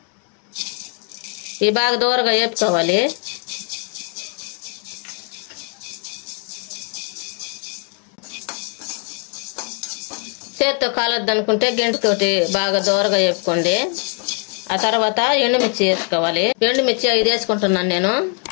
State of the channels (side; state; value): right; quieter; 39.4 dB